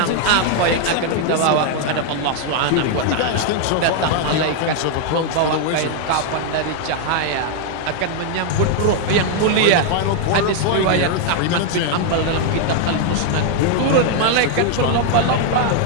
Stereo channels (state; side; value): different; both; correlation 0.00